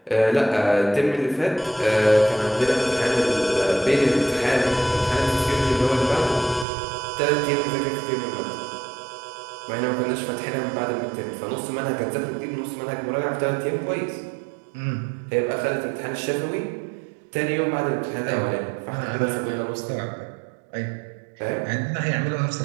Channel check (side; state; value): left; drops out; at 6.7 s